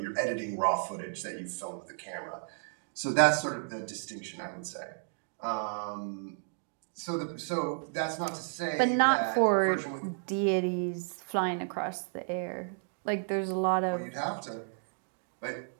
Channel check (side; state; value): left; silent; 56 dB below the other